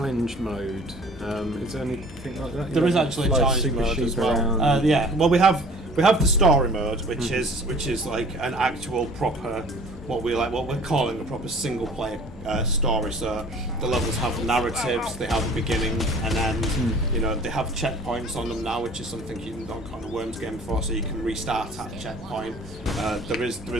mode. Is there anything like that? there is actually a challenge mode as well. Yeah. Well, we have the story mode, which is like an actual proper what we're calling a proper single player story. So the levels have narratives, they have a beginning and end. They have checkpoints on them now, which is something you didn't on a Worms game before. So you can restart at a checkpoint. There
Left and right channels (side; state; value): both; normal; correlation 0.49